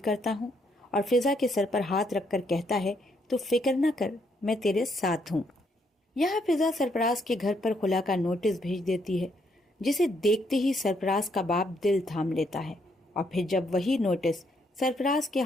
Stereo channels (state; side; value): normal; both; correlation 0.73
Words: ہوں، اور فضا کے سر پر ہاتھ رکھ کر کہتا ہے تو فکر نہ کر، میں تیرے ساتھ ہوں۔ یہاں فضا سرفراز کے گھر پر خلا کا نوٹس بھیج دیتی ہے، جسے دیکھتے ہی سرفراز کا باپ دل تھام لیتا ہے، اور پھر جب وہی نوٹس سرفراز کے